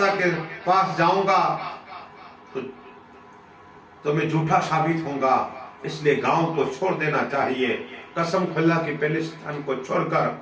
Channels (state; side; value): identical; both; correlation 1.00